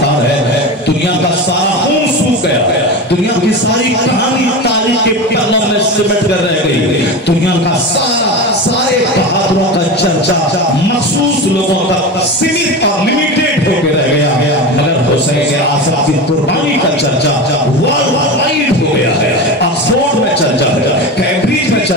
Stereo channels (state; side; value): normal; both; correlation 0.25